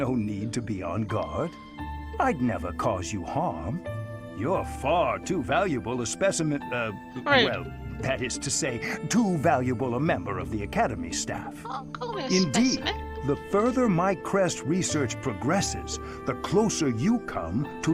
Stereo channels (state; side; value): identical; both; correlation 1.00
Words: need to be on guard. I'd never cause you harm. You're far too valuable a specimen, Right. well, that is to say, too valuable a member of the Academy staff. Oh, call me a Indeed, specimen. The further my crest research progresses, the closer you come to